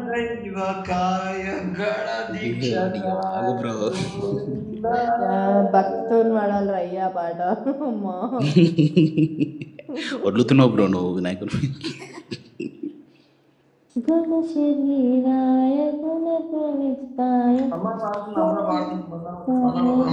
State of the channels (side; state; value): both; identical; correlation 1.00